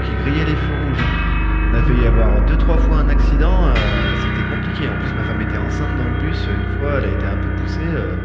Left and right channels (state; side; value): identical; both; correlation 1.00